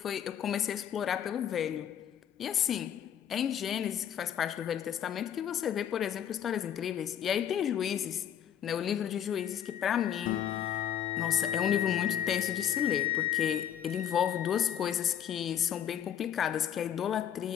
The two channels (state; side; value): quieter; right; 9.6 dB